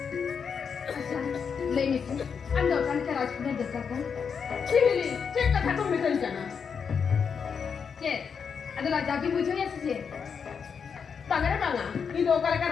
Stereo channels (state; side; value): quieter; right; 6.4 dB